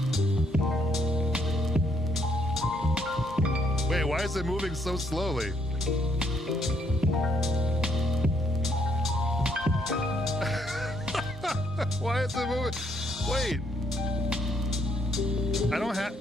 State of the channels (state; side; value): normal; both; correlation 0.71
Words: Wait, why is it moving so slowly? Why is it moving? Wait. I don't have,